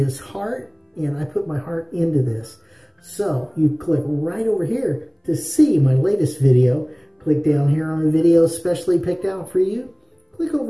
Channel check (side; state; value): both; identical; correlation 1.00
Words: heart. And I put my heart into this. So you click right over here to see my latest video. Click down here on the video specially picked out for you. Click